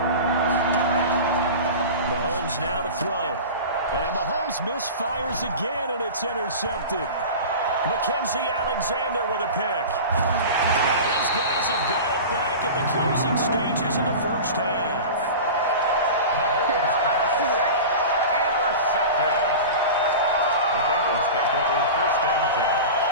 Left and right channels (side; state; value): both; inverted; correlation -0.32